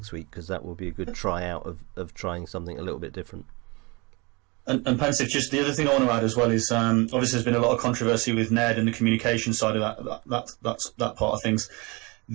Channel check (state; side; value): quieter; left; 27.0 dB